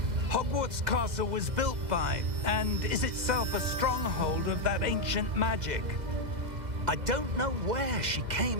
Hogwarts Castle was built by, and is itself a stronghold of that ancient magic. I don't know where she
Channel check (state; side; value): late; left; 2.0 ms